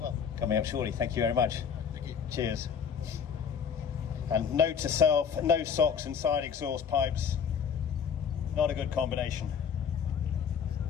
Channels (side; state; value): right; quieter; 7.2 dB